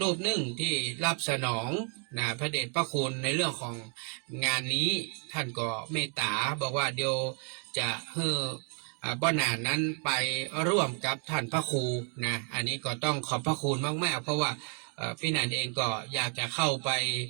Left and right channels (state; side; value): quieter; left; 37.8 dB